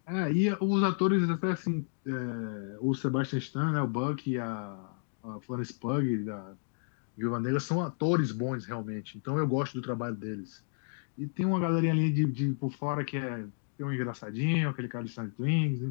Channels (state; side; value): silent; right; digital silence